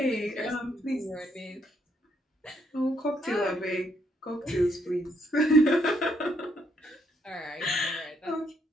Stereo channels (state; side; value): normal; both; correlation 0.73